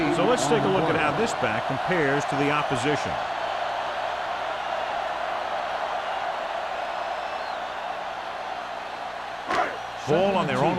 So let's take a look at how this back compares to the opposition. Ball on their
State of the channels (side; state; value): both; identical; correlation 1.00